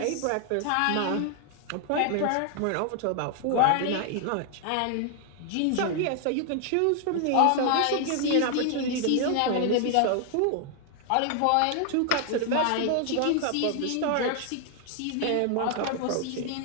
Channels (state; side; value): different; both; correlation 0.00